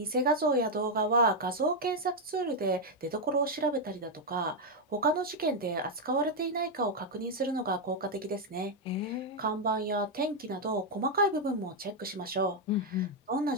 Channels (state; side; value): normal; both; correlation 0.00